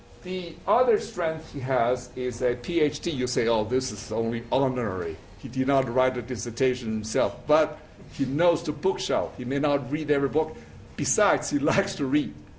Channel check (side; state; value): both; identical; correlation 1.00